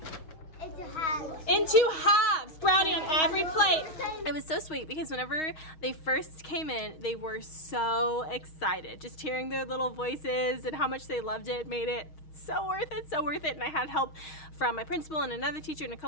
Into halves. Into halves. Brownie on every plate. It was so sweet because whenever they first came in, they were so excited. Just hearing their little voices and how much they loved it made it so worth it, so worth it. And I had help from my principal and another teacher and a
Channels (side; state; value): right; late; 6.3 ms